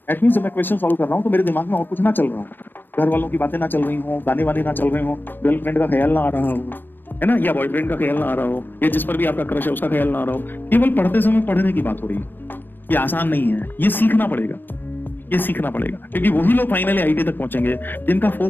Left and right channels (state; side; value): late; right; 0.094 ms